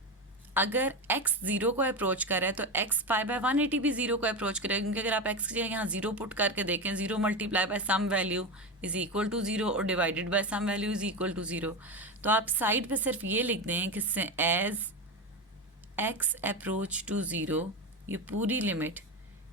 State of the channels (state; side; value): normal; both; correlation 0.18